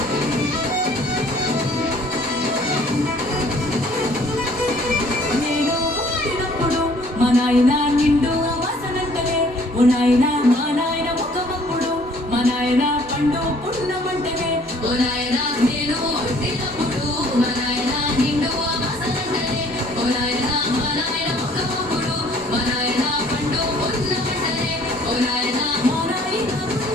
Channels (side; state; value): both; normal; correlation 0.57